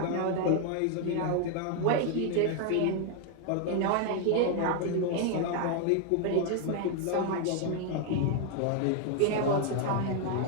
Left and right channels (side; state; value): both; different; correlation 0.00